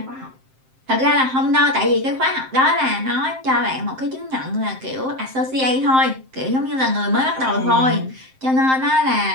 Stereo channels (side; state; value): left; late; 7.6 ms